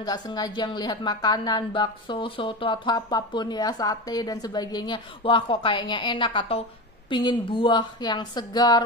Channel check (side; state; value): both; normal; correlation 0.23